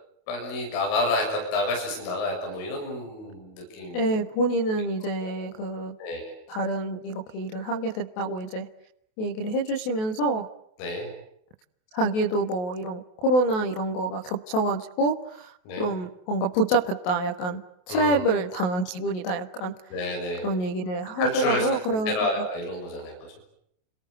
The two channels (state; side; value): late; right; 28 ms